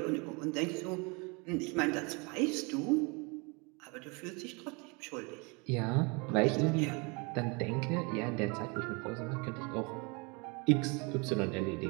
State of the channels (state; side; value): quieter; left; 29.9 dB